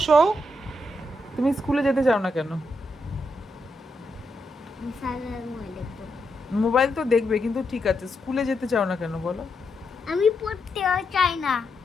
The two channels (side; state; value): both; normal; correlation 0.82